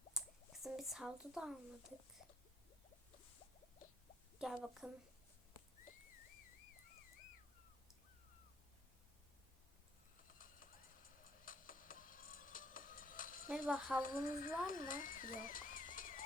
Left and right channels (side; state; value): both; normal; correlation 0.63